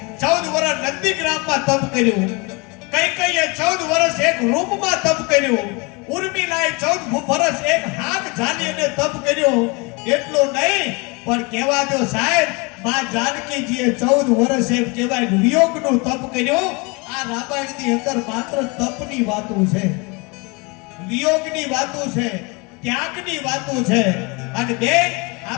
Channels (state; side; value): quieter; right; 28.6 dB